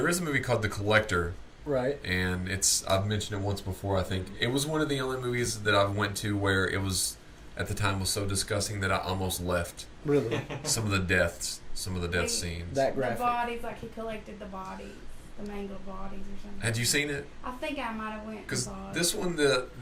is a movie called The Collector. Right. And I've mentioned it once before, I think. It was one of the only movies that I've went to where it was, at the time, was so disgusting that I almost left. Really? Some of the death scenes. That graphic. The bodies, like he collected the bodies, the mangled bodies or something. Had you seen it? I think I might have went. Because this one,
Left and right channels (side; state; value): both; identical; correlation 1.00